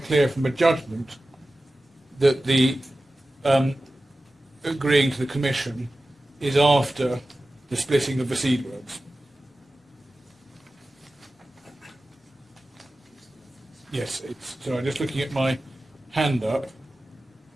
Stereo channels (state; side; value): normal; both; correlation 0.95